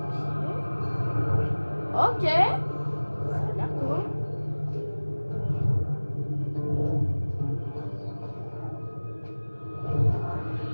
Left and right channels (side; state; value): both; inverted; correlation -1.00